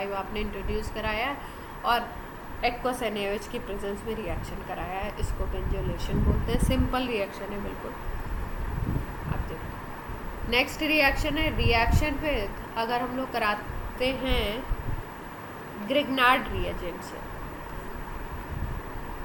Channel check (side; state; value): both; identical; correlation 1.00